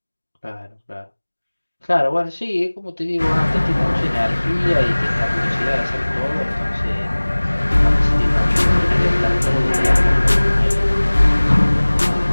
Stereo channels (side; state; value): both; inverted; correlation -1.00